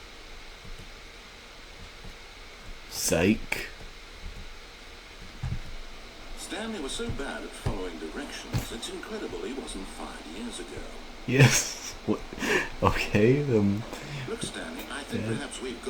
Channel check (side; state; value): both; identical; correlation 1.00